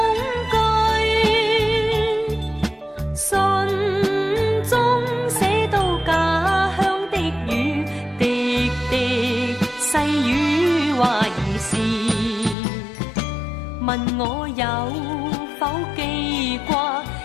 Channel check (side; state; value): right; drops out; at 12.6 s